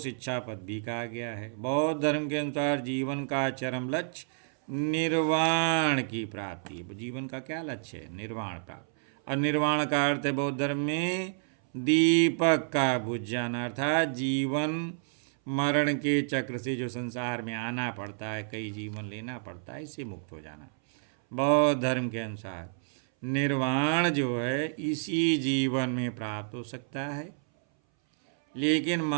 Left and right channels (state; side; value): silent; left; 58 dB below the other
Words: पद भी कहा गया है। बौद्ध धर्म के अनुसार जीवन का चरम लक्ष्य निर्वाण की प्राप्ति है। जीवन का क्या लक्ष्य है? निर्वाण प्राप्त। और निर्वाण का अर्थ है बौद्ध धर्म में दीपक का बुझ जाना, अर्थात जीवन मरण के चक्र से जो संसार में आना पड़ता है, कई जीवन लेना पड़ता है, इससे मुक्त हो जाना। बौद्ध धर्म के अनुसार निर्वाण जो है इसी जीवन में प्राप्त हो सकता है, लेकिन